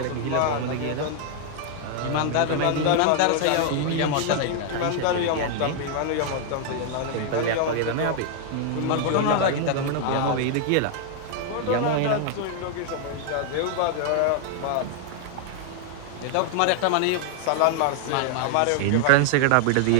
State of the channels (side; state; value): both; different; correlation 0.00